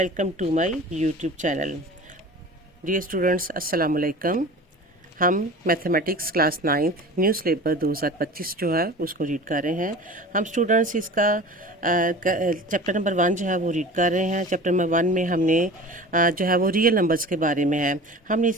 to my YouTube channel. Dear students, अस्सलाम वालेकुम। हम mathematics class 9th new syllabus 2025 जो है उसको रीड कर रहे हैं। हम स्टूडेंट्स इसका चैप्टर नंबर 1 जो है वो रीड कर रहे हैं। चैप्टर नंबर 1 में हमने जो है वो रियल नंबर्स के बारे में है। हमने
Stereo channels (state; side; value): normal; both; correlation 0.38